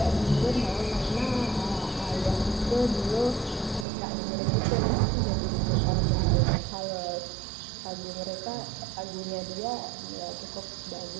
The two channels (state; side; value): drops out; left; at 3.9 s